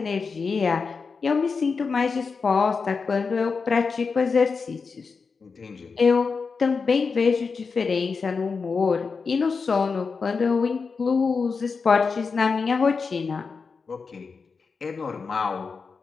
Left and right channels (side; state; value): right; quieter; 5.0 dB